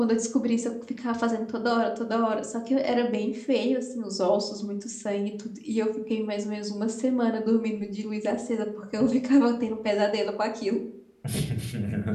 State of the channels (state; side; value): identical; both; correlation 1.00